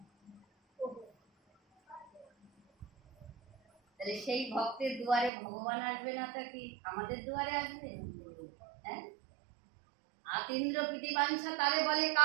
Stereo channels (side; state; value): left; drops out; at 5.3 s